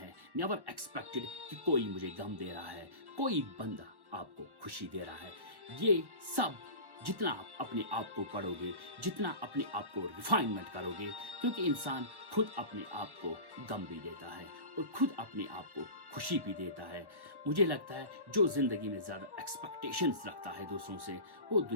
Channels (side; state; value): left; late; 1.1 ms